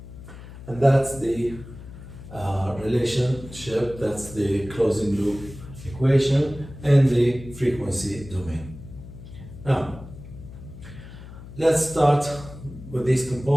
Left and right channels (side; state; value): left; noise; hum, 15 dB below the sound